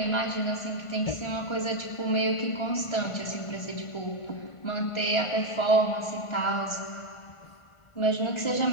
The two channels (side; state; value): right; late; 1.4 ms